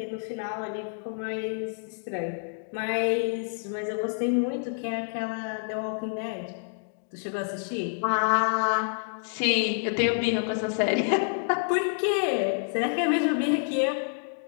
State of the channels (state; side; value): silent; right; digital silence